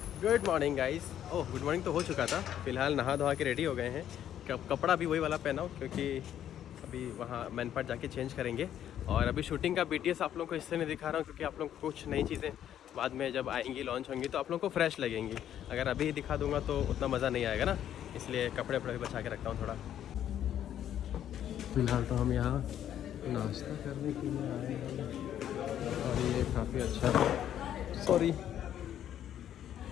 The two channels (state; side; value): quieter; right; 10.6 dB